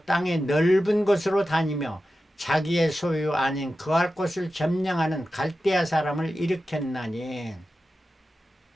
땅의 넓은 곳으로 다니며 자기의 소유 아닌 거할 곳을 점령하는 갈대아 사람을 일으켰나니.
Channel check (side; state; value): both; normal; correlation 0.93